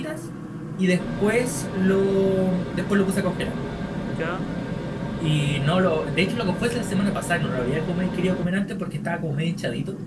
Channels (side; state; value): both; identical; correlation 1.00